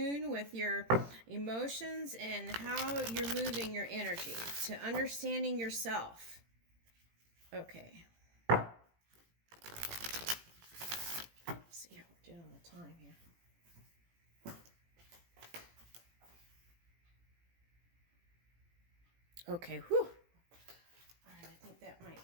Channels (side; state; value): left; late; 18 ms